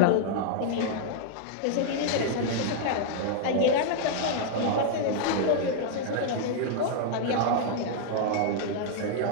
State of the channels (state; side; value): different; both; correlation -0.01